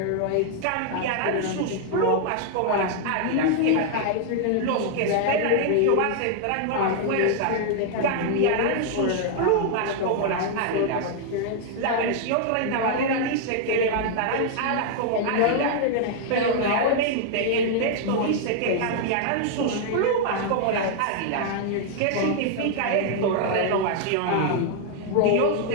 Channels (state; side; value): different; both; correlation 0.00